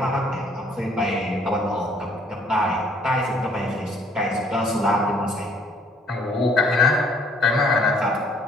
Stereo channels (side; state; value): both; normal; correlation 0.61